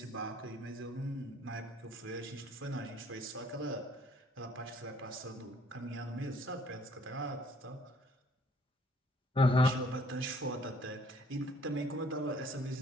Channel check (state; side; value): normal; both; correlation 0.60